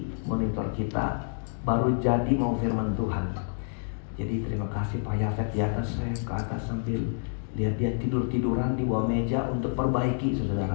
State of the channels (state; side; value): silent; right; digital silence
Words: monitor kita baru jadi mau firman Tuhan. Jadi terima kasih Pak Yafet di atas, saya ke atas sambil lihat dia tidur-tiduran di bawah meja untuk perbaiki